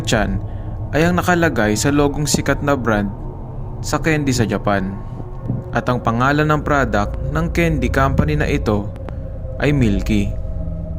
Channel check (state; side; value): identical; both; correlation 1.00